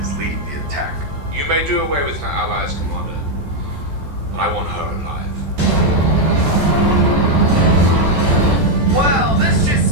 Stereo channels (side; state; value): left; late; 14 ms